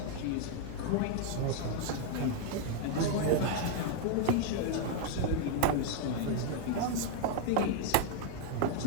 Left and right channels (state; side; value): different; both; correlation 0.00